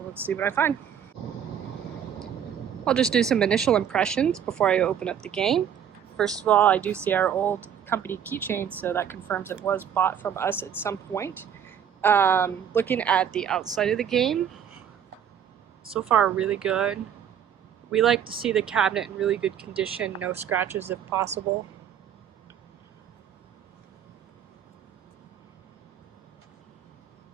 let's see what I find. I'll just do some initial impressions before I open up the game. First of all, I do see our old company keychain, so that confirms it was bought from us at some point. Looking at the outside of the game, so far really good. We like to see the cabinet in really good condition, no scratches if possible.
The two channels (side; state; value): left; quieter; 8.8 dB